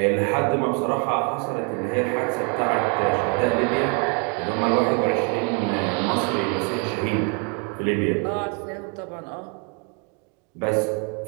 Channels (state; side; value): quieter; left; 33.9 dB